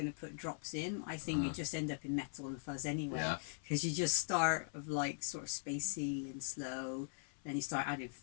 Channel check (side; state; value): right; silent; 51 dB below the other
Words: put drops in, I think you just end up in metal and fuzz anyway. Yeah. Because you just start of like sort of spacey and slow, then you start adding